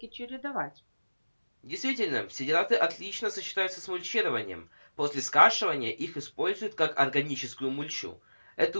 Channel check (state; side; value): inverted; both; correlation -1.00